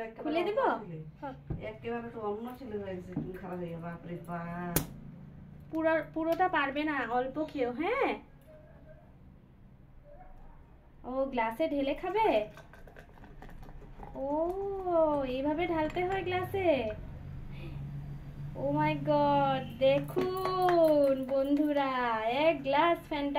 একটা খুলে দিব। হ্যাঁ একেবারে তো অন্য ছিল হয়েছে চুল খারাপ হয়ে বাপ রে বাপ। পুরোটা পারবে না, অল্প খেও। হ্যাঁ, ও গ্লাসে ঢেলে খাবে। ও এইভাবে ঢালতে হয় গ্লাসে। ও মাই গড, দেখুন বন্ধুরা, এক গ্লাস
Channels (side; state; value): both; identical; correlation 1.00